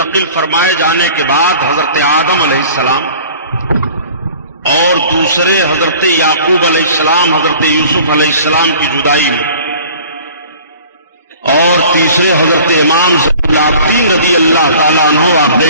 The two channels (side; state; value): both; inverted; correlation -0.47